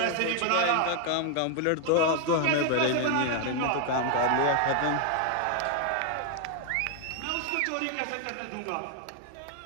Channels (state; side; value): different; both; correlation 0.00